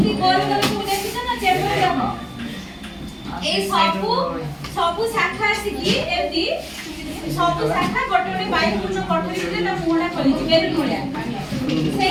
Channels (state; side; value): identical; both; correlation 1.00